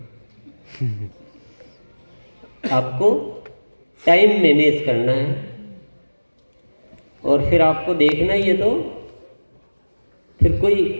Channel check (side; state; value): both; inverted; correlation -1.00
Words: आपको टाइम मैनेज करना है और फिर आपको देखना ही है, तो फिर कोई